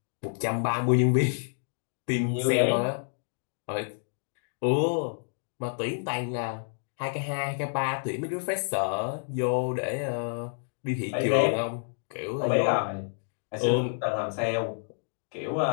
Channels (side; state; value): right; silent; digital silence